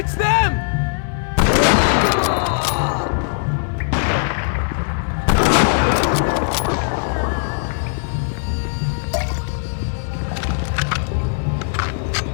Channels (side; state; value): right; silent; digital silence